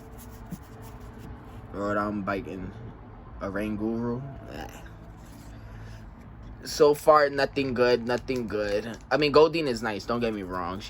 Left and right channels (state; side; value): identical; both; correlation 1.00